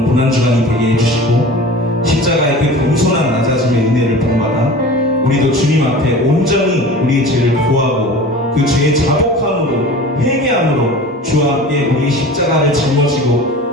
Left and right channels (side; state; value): both; normal; correlation 0.38